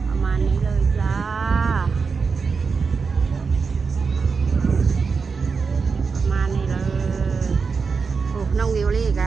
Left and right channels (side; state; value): left; quieter; 5.1 dB